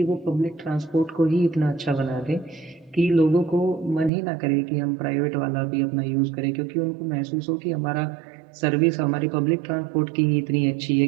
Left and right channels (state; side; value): drops out; left; at 4.1 s